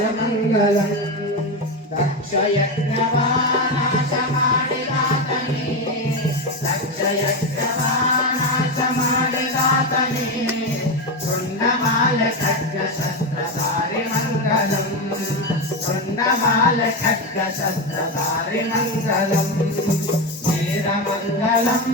దక్షయజ్ఞవానాశమాడిదాతని దక్షయజ్ఞవానాశమాడిదాతని కుండమాల ఖడ్గ శస్త్రధారి మంగళం కుండమాల ఖడ్గ శస్త్రధారి మంగళం వీరమంగళం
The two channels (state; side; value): normal; both; correlation 0.14